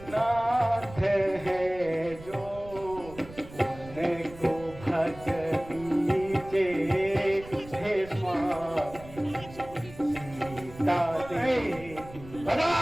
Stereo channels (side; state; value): right; noise; rumble, 17 dB below the sound